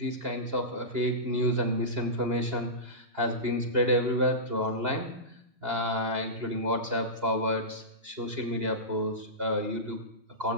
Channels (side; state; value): left; late; 2.8 ms